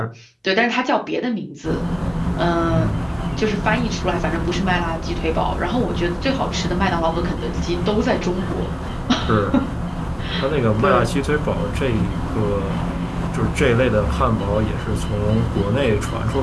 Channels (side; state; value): both; identical; correlation 1.00